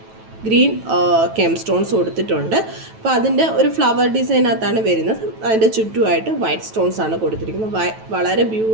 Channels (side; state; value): left; late; 9.2 ms